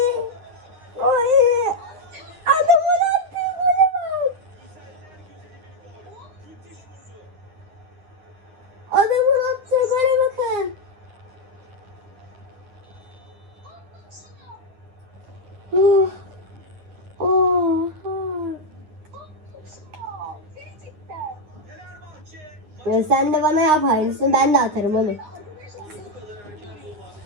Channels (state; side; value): late; left; 9.7 ms